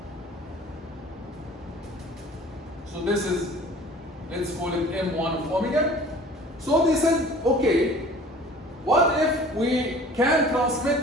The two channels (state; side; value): normal; both; correlation 0.46